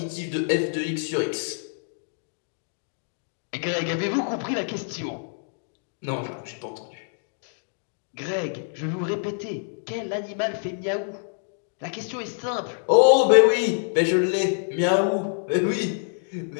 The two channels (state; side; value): silent; right; digital silence